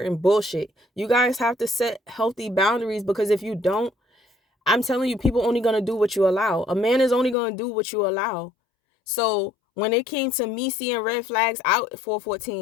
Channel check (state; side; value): drops out; right; at 7.4 s